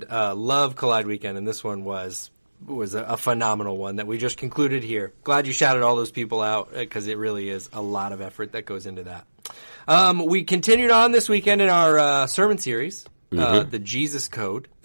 Love Collide Weekend, and this one was a phenomenal one that we just concluded here. Glad you shouted all those people out because it really is a lot of effort that goes into that. We continued on this weekend in our sermon series. The Jesus Code.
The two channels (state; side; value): inverted; both; correlation -1.00